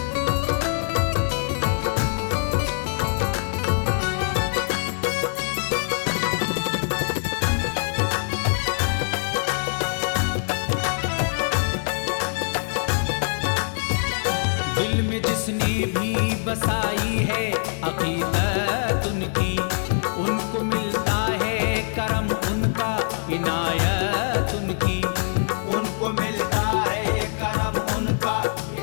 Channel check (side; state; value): right; silent; 63 dB below the other